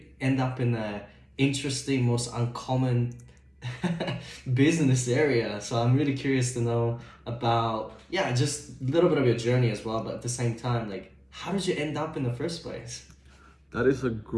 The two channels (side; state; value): both; identical; correlation 1.00